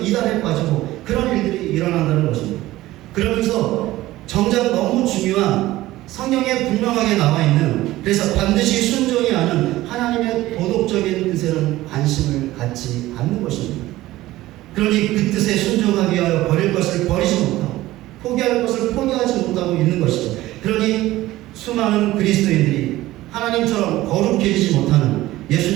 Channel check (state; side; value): quieter; left; 16.7 dB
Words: 빠지고 그런 일들이 일어난다는 것입니다. 그러면서 정작 너무 중요한 성경에 분명하게 나와 있는 그래서 반드시 순종해야 하는 하나님의 도덕적인 뜻에는 관심을 갖지 않는 것입니다. 그러니 그 뜻에 순종하기 위하여 버릴 것을 버리지 못하고 포기할 것을 포기하지 못하고 있는 것이죠. 그러니 수많은 그리스도인들이 하나님처럼 거룩해지지 못하는